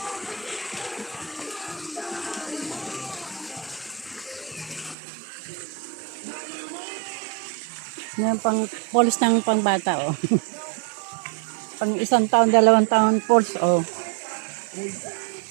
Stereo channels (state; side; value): drops out; left; at 5.0 s